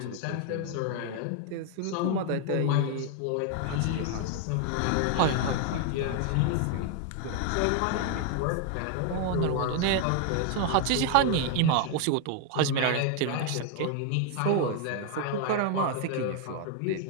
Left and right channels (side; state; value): both; different; correlation 0.00